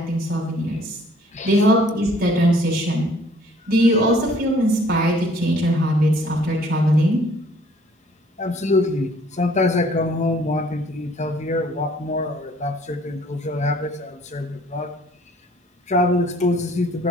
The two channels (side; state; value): both; normal; correlation 0.58